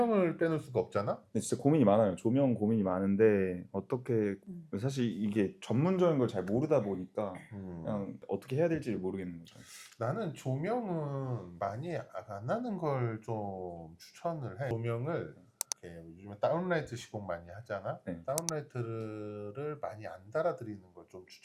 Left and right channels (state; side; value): identical; both; correlation 1.00